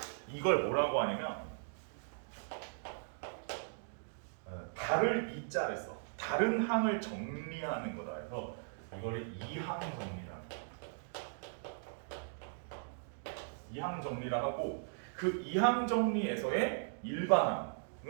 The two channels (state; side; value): silent; left; digital silence